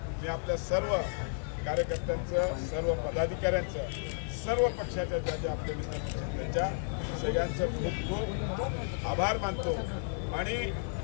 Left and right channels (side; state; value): right; silent; 56 dB below the other